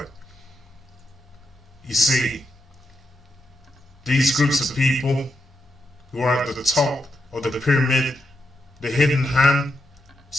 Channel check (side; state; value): both; normal; correlation 0.84